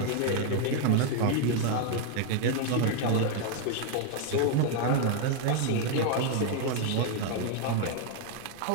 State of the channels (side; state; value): both; different; correlation 0.00